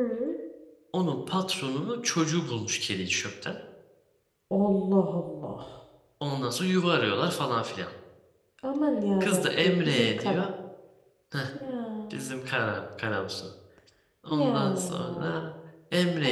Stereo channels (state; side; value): identical; both; correlation 1.00